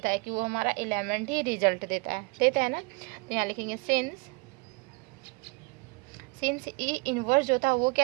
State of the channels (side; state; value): left; quieter; 28.5 dB